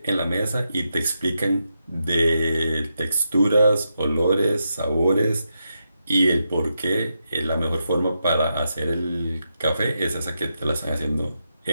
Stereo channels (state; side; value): inverted; both; correlation -0.85